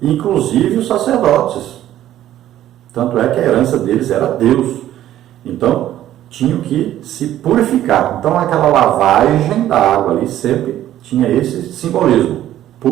inclusive os sacerdotes. Tanto é que a herança deles era Deus. Então, tinham que se purificar. Então, aquela lavagem da água ali sempre tinha esse simbolismo,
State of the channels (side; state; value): left; quieter; 12.7 dB